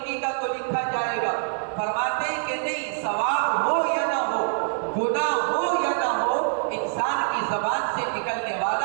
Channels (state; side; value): silent; left; digital silence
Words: کا تو لکھا جائے گا. فرماتے ہیں کہ نہیں، ثواب ہو یا نہ ہو، گناہ ہو یا نہ ہو، انسان کی زبان سے نکلنے